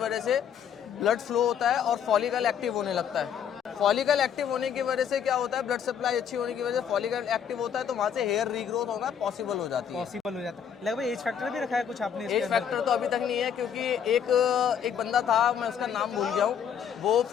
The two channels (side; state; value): right; quieter; 8.2 dB